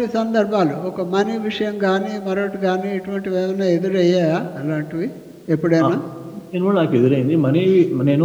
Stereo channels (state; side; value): identical; both; correlation 1.00